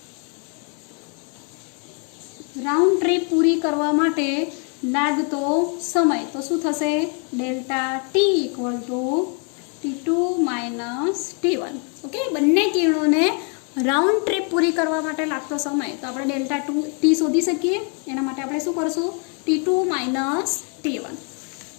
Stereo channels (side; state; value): right; quieter; 39.3 dB